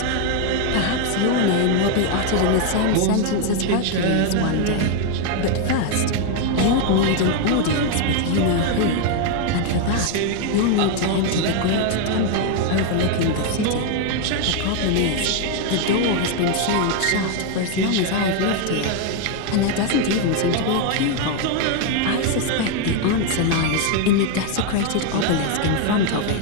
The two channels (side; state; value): both; different; correlation 0.01